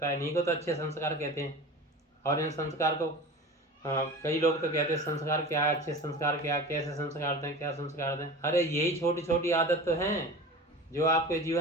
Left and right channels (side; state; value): both; normal; correlation 0.34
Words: है। इन्हीं को तो अच्छे संस्कार कहते हैं। और इन संस्कार को कई लोग तो कहते हैं संस्कार क्या है, अच्छे संस्कार क्या, कैसे संस्कार दें, क्या संस्कार दें। अरे यही छोटी छोटी आदत तो हैं जो आपके